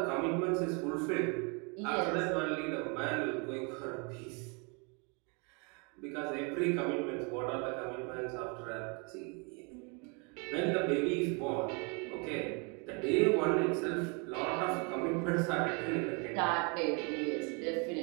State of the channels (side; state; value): left; quieter; 33.4 dB